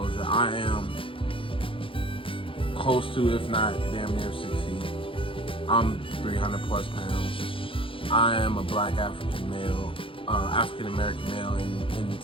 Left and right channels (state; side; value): late; right; 0.26 ms